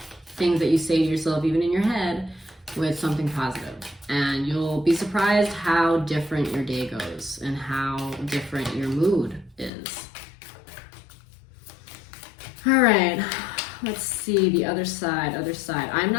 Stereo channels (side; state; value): right; drops out; at 9.7 s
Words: things that you say to yourself, even in your head, with something positive. And you'll be surprised how different your day goes and how different your mood is. All right. Let's see the other side, I'm